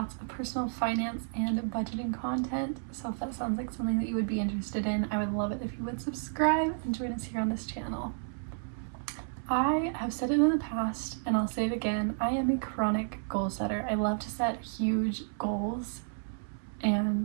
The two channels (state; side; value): silent; left; 57 dB below the other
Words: of personal finance and budgeting content, so if that sounds like something that you would be interested in, I would love it if you would subscribe and join us here on this channel. I have said it in the past and I'll say it again, I am a chronic goal setter. I love to set huge goals